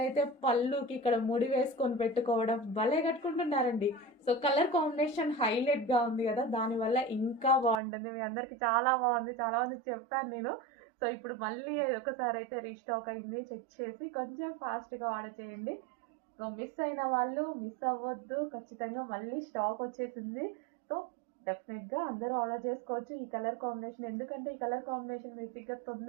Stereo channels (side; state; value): left; drops out; at 7.8 s